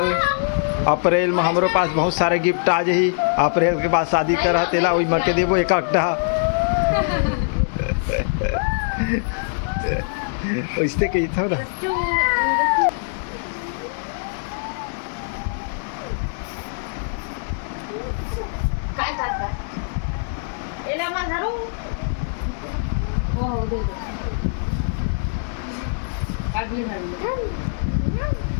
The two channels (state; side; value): silent; right; digital silence